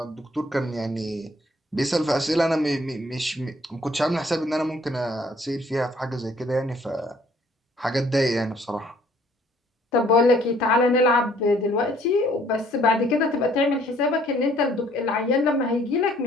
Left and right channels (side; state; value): both; normal; correlation 0.61